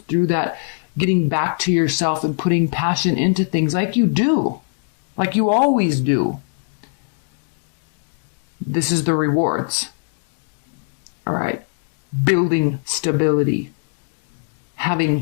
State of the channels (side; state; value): right; silent; digital silence